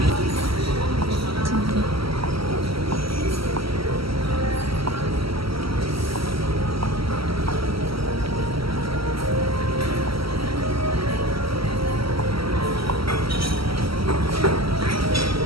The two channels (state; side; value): late; left; 0.75 ms